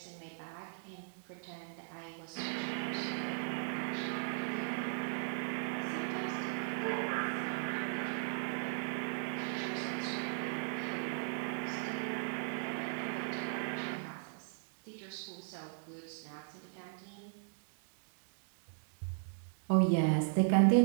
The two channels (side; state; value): left; silent; digital silence